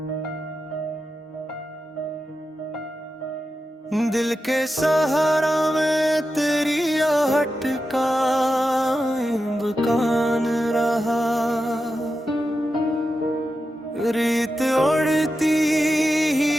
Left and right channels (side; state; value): both; normal; correlation 0.90